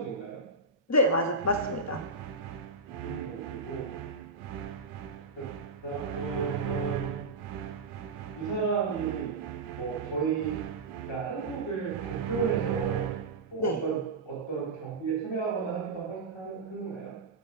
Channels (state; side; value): quieter; left; 3.6 dB